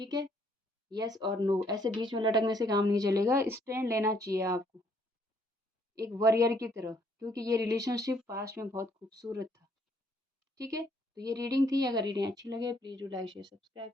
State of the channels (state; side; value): normal; both; correlation 0.67